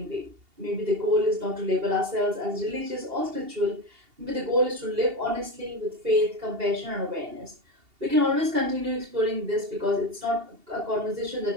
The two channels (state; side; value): late; left; 2.8 ms